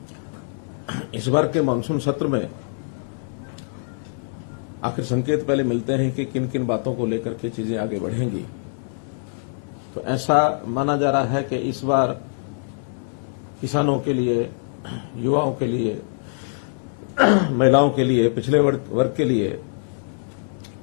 इस बार के मानसून सत्र में आखिर संकेत पहले मिलते हैं कि किन किन बातों को लेकर के चीजें आगे बढ़ेंगी। तो ऐसा माना जा रहा है कि इस बार किसानों के लिए, युवाओं के लिए, महिलाओं के लिए, पिछड़े वर्ग के लिए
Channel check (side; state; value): right; silent; digital silence